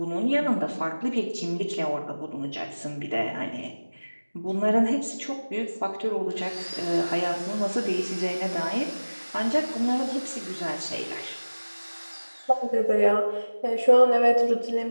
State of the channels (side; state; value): both; inverted; correlation -1.00